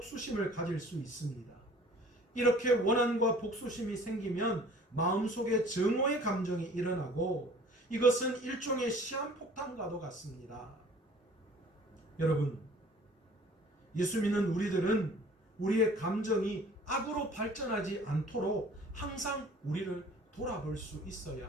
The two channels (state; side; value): normal; both; correlation 0.50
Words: 가질 수 있습니다. 이렇게 원한과 복수심이 생기면 마음속에 증오의 감정이 일어나고 이것은 일종의 시한폭탄과도 같습니다. 여러분, 예수 믿는 우리들은 우리의 감정이 악으로 발전하지 않도록 항상 우리를 돌아볼 수